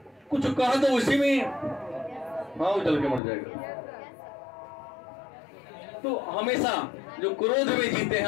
कुछ कहा तो उसी में हाँ वो जल के मर जाएगा। तो हमेशा जो क्रोध में जीते हैं,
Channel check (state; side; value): drops out; right; at 3.2 s